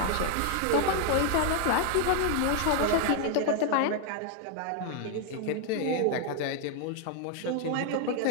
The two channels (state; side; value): different; both; correlation 0.00